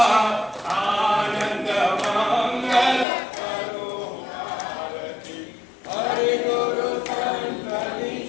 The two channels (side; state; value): right; drops out; at 3.1 s